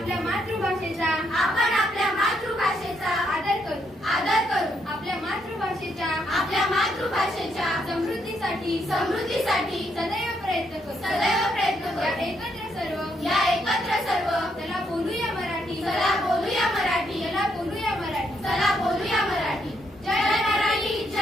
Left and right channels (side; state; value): both; normal; correlation 0.76